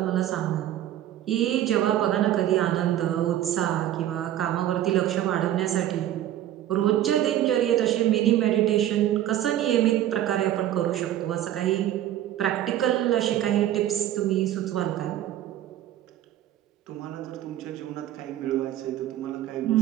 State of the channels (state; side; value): quieter; left; 12.3 dB